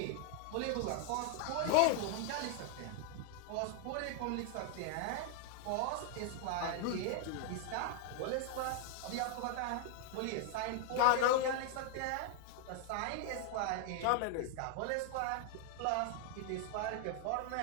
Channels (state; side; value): different; both; correlation 0.00